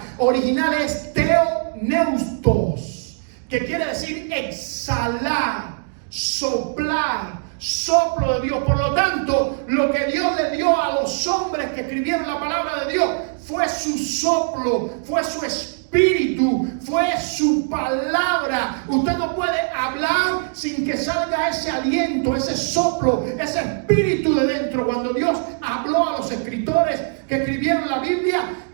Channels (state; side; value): silent; left; digital silence